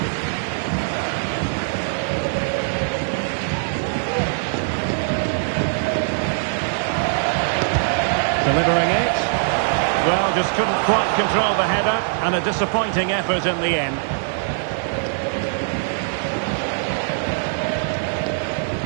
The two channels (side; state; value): left; silent; 64 dB below the other